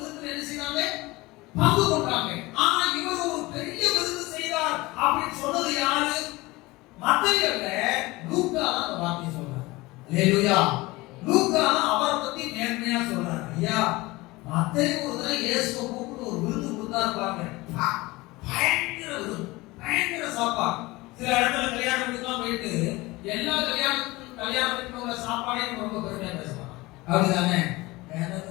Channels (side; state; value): right; quieter; 21.3 dB